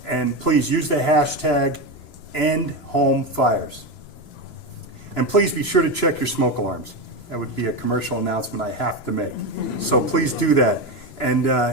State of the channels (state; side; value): late; right; 3.0 ms